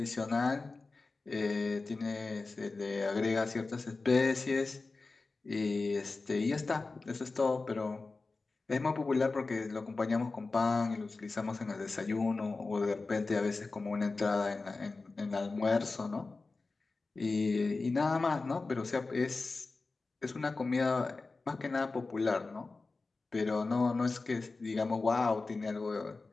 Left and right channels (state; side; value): quieter; right; 3.7 dB